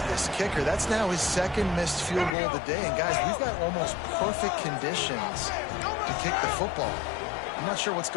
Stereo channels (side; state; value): right; drops out; at 2.4 s